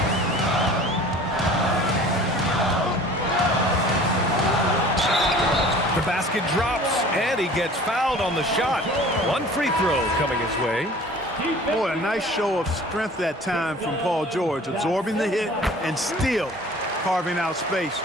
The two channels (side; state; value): both; normal; correlation 0.46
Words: The basket drops, and he gets fouled on the shot. 1 free throw coming his way. Boy, a nice show of strength that time from Paul George, absorbing the hit and still carving out space